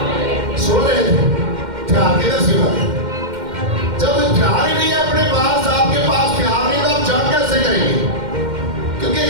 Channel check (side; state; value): left; late; 2.1 ms